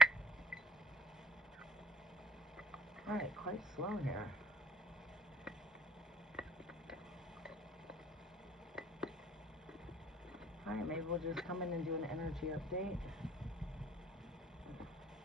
All right, quite slow here. All right, maybe we'll just come in and do an energy update.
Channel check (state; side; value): normal; both; correlation 0.52